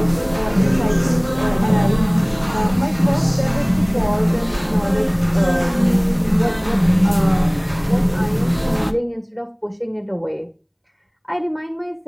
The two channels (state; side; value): identical; both; correlation 1.00